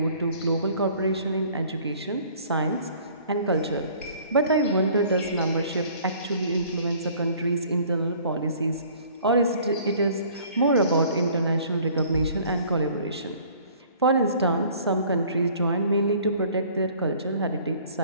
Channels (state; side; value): inverted; both; correlation -0.54